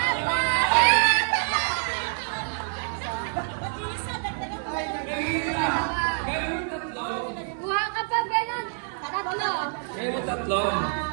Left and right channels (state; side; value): silent; left; digital silence